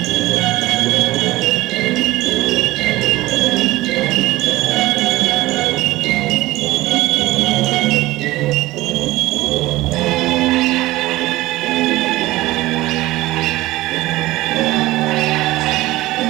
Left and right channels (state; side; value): quieter; left; 18.1 dB